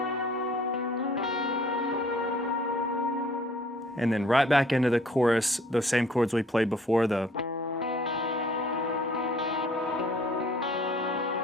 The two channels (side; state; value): both; normal; correlation 0.56